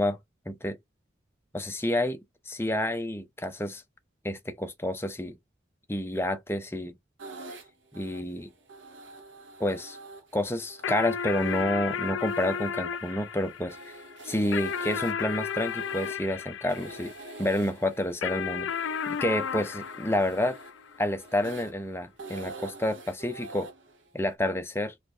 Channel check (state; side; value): normal; both; correlation 0.65